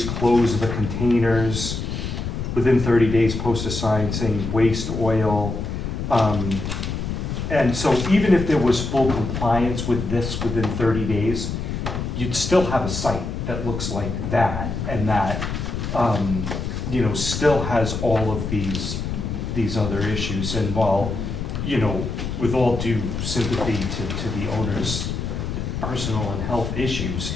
close the containers. Within 30 days, post a sign saying waste oil. And so even if there was full compliance with this within 30 days, you'd still have a site that looks like that, and that, you know, still has all of these other issues. And while, you know, with all due sympathy to the owner's personal and health issues,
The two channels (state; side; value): noise; left; rumble, 4 dB below the sound